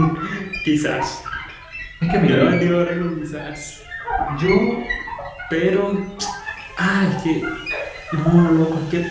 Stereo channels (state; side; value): identical; both; correlation 1.00